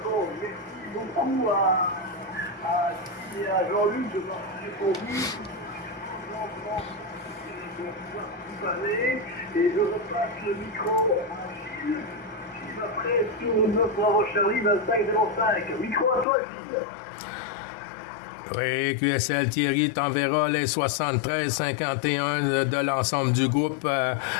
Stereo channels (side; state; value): right; drops out; at 16.2 s